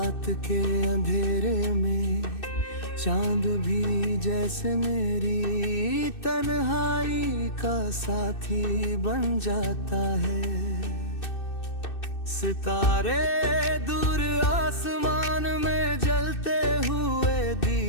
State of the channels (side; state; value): right; late; 2.6 ms